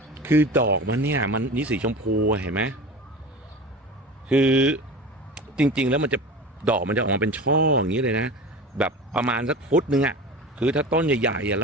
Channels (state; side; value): normal; both; correlation 0.32